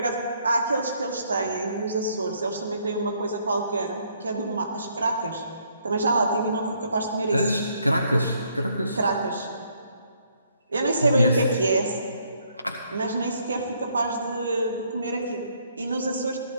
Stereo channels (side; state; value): both; inverted; correlation -0.69